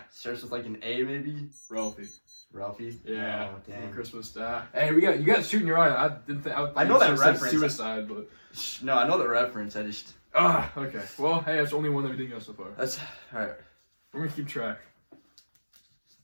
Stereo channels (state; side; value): inverted; both; correlation -1.00